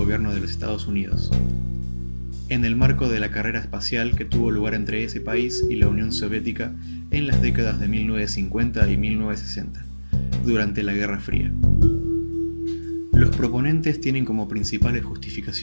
de los Estados Unidos, en el marco de la carrera espacial que tuvo lugar entre ese país y la Unión Soviética en las décadas de 1950 y 1960, durante la Guerra Fría. Los proponentes tienen como principales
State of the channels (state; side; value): inverted; both; correlation -1.00